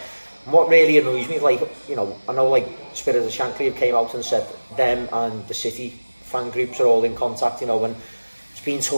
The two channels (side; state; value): both; inverted; correlation -1.00